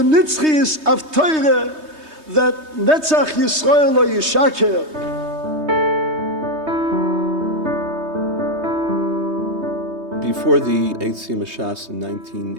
nitzchias of Torah that Netzach Yisrael lo yishaker. Before the Siyum Hashas in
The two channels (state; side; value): late; left; 3.2 ms